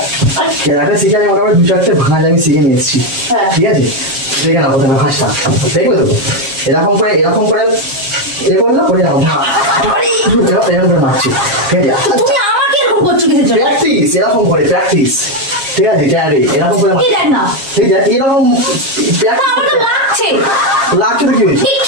কেয়ারে শিখে আমি মোটামুটি 2-4টে ভাঁজ আমি শিখে নিয়ে এসেছি। ঠিক আছে, দেখে না প্রথমে ভাঁজটা দেখবে তো এরকম করে এ করলো করে এরকম করে মারছি। ঠিক আছে, প্র্যাকটিস এরকম করে প্র্যাকটিস। ঠিক আছে, এরকম করে ঠিক আছে, এরকম লাগছে তো কি হয়েছে?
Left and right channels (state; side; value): late; left; 7.4 ms